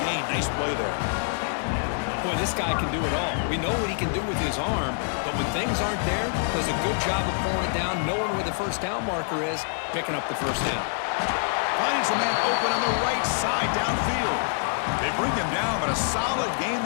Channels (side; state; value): right; silent; 55 dB below the other